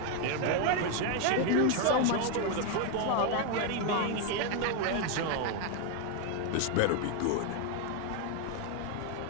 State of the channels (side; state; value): both; different; correlation 0.01